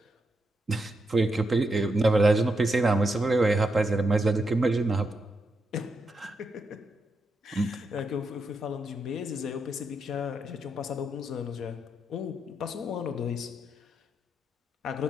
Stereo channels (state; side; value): normal; both; correlation 0.82